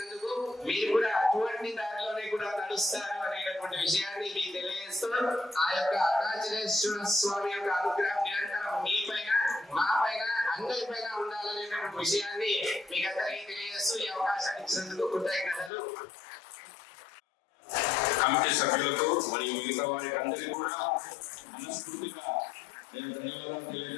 మీరు కూడా అటువంటి దారిలోనే కూడా నడుస్తారు అనేటటువంటి విషయాన్ని మీకు తెలియజేస్తూ ఆ యొక్క అరుణాచలేశ్వర స్వామి యొక్క అనుగ్రహం నిరంతరం మీ పైన మా పైన అందరి పైన ఉండాలనేటువంటి విషయాన్ని మీకు అందరికీ తెలియజేస్తూ ఈ అవకాశాన్ని ఇచ్చినందుకు కృతజ్ఞతలు. కమిటీ సభ్యులకు మరియు మిగతా వారికి అందరికీ కూడా మనస్ఫూర్తిగా నేను ధన్యవాదాలు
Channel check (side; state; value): right; drops out; at 15.7 s